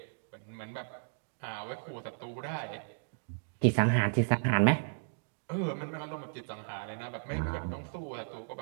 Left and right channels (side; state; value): left; silent; digital silence